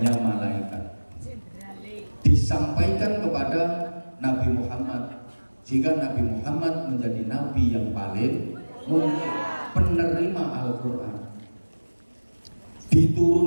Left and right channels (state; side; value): inverted; both; correlation -1.00